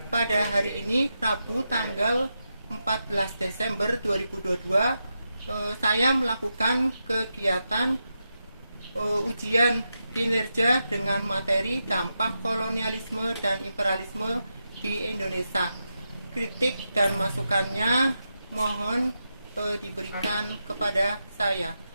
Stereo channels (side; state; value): both; inverted; correlation -0.87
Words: Pada hari ini, Rabu tanggal 14 Desember 2022, saya melakukan kegiatan ujian kinerja dengan materi dampak kolonialisme dan imperialisme di Indonesia. Kritik dan masukannya mohon diberikan kepada saya.